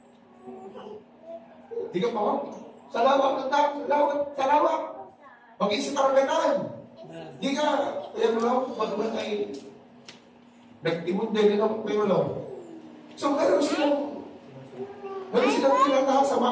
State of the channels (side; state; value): both; identical; correlation 1.00